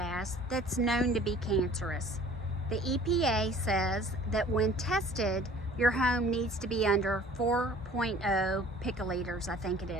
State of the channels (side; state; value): both; normal; correlation 0.50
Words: that's known to be cancerous. The EPA says that when tested, your home needs to be under 4.0 picoliters, I think it